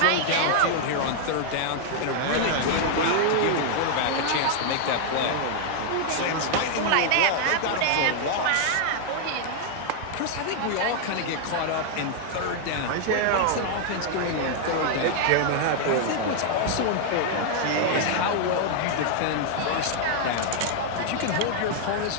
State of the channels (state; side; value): different; both; correlation 0.00